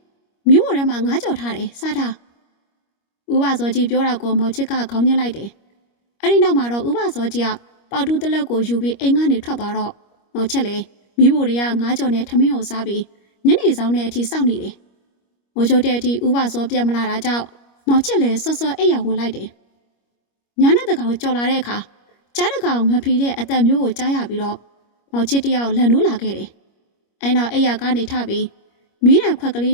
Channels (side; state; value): right; late; 25 ms